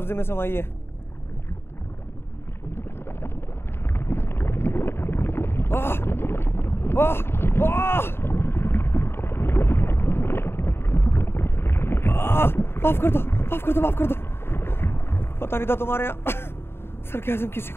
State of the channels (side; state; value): right; late; 0.11 ms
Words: में समाई है। माफ कर दो, माफ कर दो, माफ कर दो। पता नहीं था तुम्हारे यहाँ सरकाज़म किसी